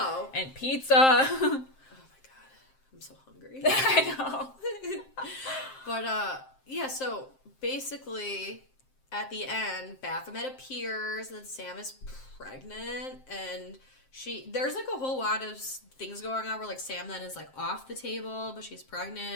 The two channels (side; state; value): right; late; 7.6 ms